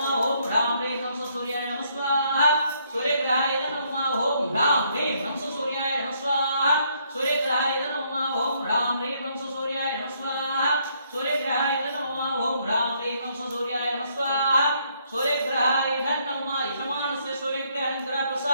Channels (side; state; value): both; inverted; correlation -0.70